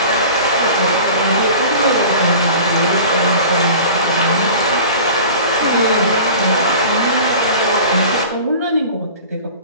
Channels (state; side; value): inverted; both; correlation -0.40